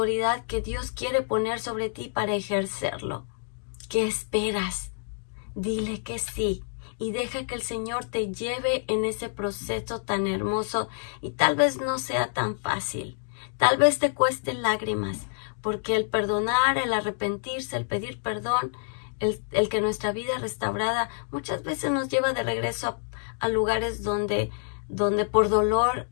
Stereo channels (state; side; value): silent; right; digital silence